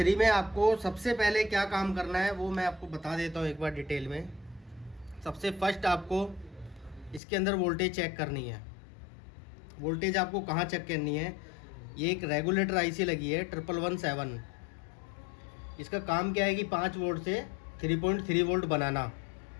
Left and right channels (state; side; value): drops out; right; at 7.2 s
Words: में आपको सबसे पहले क्या काम करना है वो मैं आपको बता देता हूँ एक बार डिटेल में। सबसे फर्स्ट आपको इसके अंदर वोल्टेज चेक करनी है। वोल्टेज आपको कहाँ चेक करनी है? ये एक रेगुलेटर आईसी लगी है 1117। इसका काम क्या है कि 5 वोल्ट से 3.3 वोल्ट बनाना,